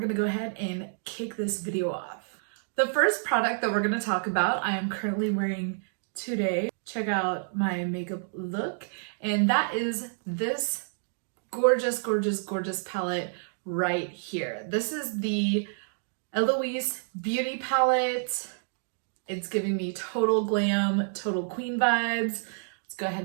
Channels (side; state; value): left; silent; digital silence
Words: go ahead and kick this video off. The first product that we're gonna talk about, I am currently wearing today. Check out my makeup look, and that is this gorgeous, gorgeous, gorgeous palette right here. This is the Eloise Beauty Palette. It's giving me total glam, total queen vibes. Let's go